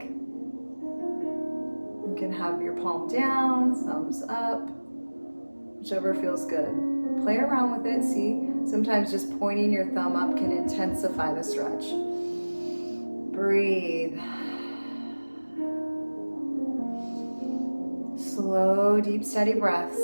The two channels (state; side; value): inverted; both; correlation -1.00